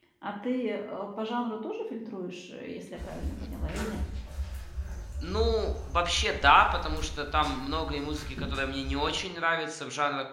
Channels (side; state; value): both; identical; correlation 1.00